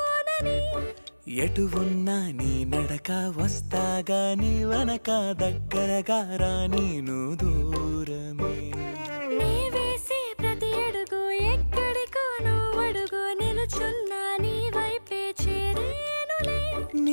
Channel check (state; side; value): inverted; both; correlation -1.00